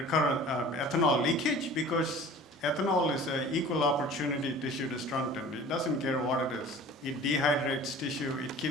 ethanol leakage, because ethanol is an equal opportunity tissue destructant. It doesn't care what it is. It dehydrates tissue. It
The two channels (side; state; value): both; normal; correlation 0.44